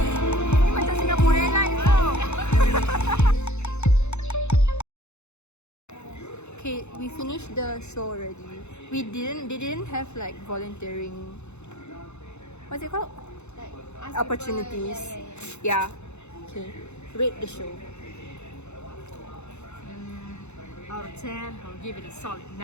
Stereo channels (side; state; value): right; late; 0.82 ms